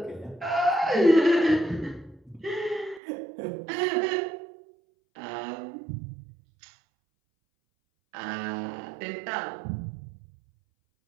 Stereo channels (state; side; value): drops out; left; at 3.0 s